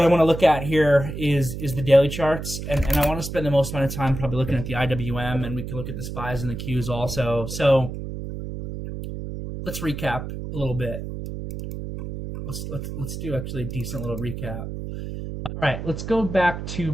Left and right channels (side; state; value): right; noise; hum, 7 dB below the sound